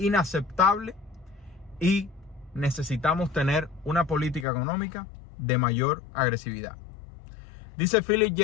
y necesitamos tener una política económica de mayor agresividad. Dice Philip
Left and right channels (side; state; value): right; drops out; at 4.5 s